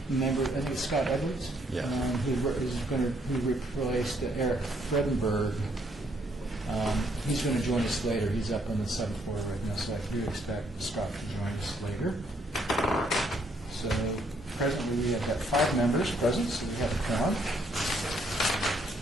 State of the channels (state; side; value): normal; both; correlation 0.70